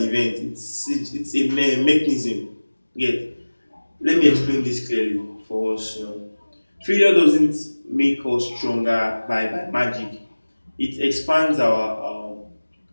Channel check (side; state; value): both; inverted; correlation -1.00